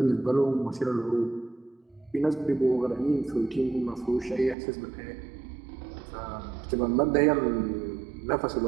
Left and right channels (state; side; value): drops out; left; at 4.5 s